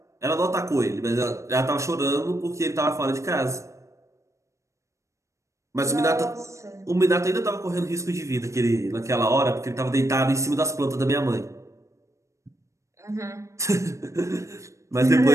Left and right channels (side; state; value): left; late; 0.15 ms